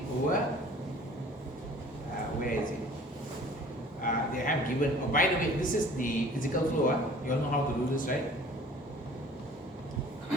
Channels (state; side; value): normal; both; correlation 0.49